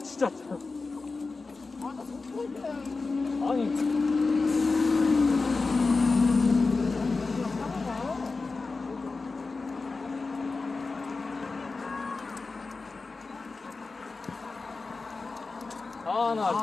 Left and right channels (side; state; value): right; quieter; 4.0 dB